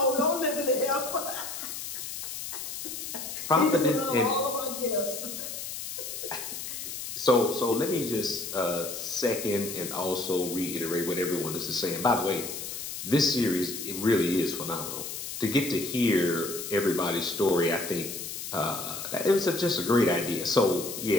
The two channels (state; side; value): noise; left; hiss, 7 dB below the sound